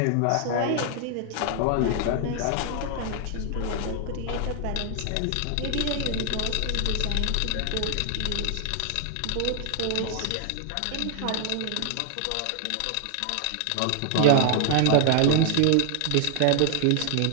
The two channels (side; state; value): both; different; correlation 0.00